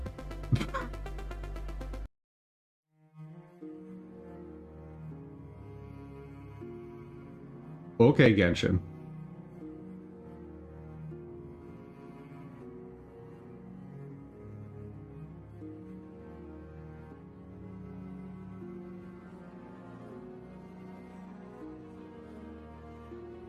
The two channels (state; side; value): identical; both; correlation 1.00